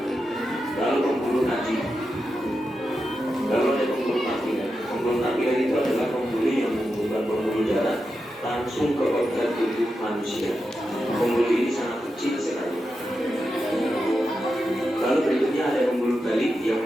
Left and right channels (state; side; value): normal; both; correlation 0.88